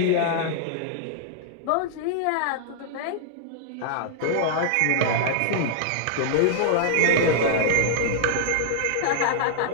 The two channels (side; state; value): both; different; correlation -0.01